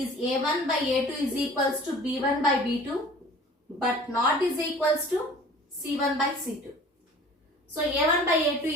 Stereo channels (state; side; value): normal; both; correlation 0.46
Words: A1 by A2 is equals to B1 by B2 but not is equals to C1 by C2. So A1 by A2